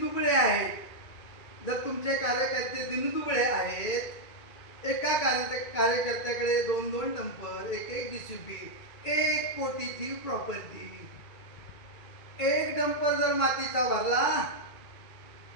आहेत. जर तुमचे कार्यकर्ते दिनदुबळे आहेत, एका कार्यकर्त्याकडे 2-2 डंपर, 1-1 JCB, 1 कोटीची प्रॉपर्टी, एक डंपर जर मातीचा भरला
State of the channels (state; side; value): late; right; 2.2 ms